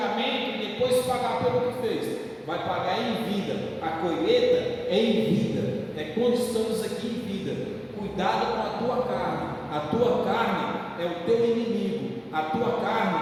e depois pagar pelo que fez. Vai pagar em vida. A colheita é em vida, é quando estamos aqui em vida. Cuidado com a tua carne. A tua carne é o teu inimigo, a tua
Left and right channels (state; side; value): identical; both; correlation 1.00